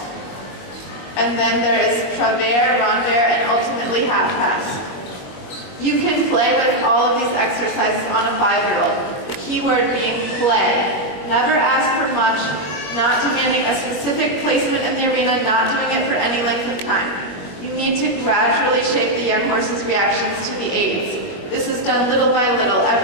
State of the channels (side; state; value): right; late; 21 ms